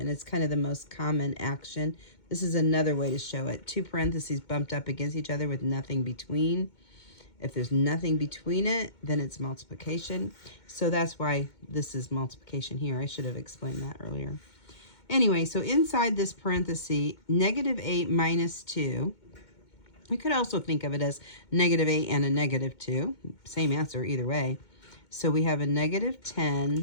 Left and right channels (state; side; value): late; right; 2.2 ms